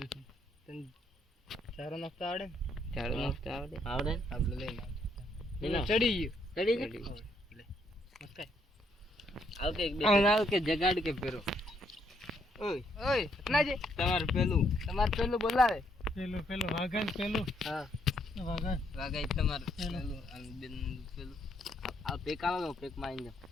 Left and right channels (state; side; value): normal; both; correlation 0.72